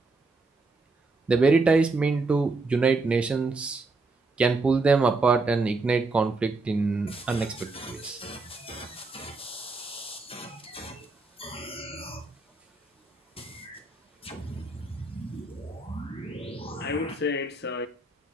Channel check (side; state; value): left; quieter; 3.5 dB